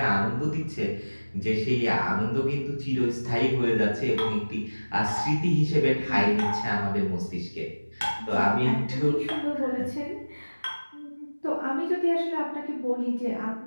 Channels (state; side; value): inverted; both; correlation -1.00